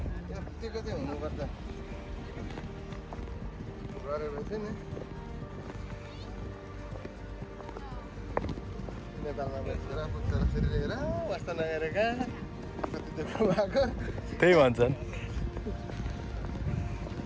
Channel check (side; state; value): both; identical; correlation 1.00